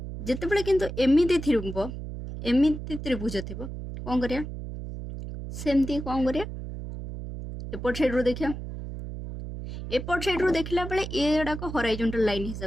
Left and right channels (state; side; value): noise; right; hum, 8 dB below the sound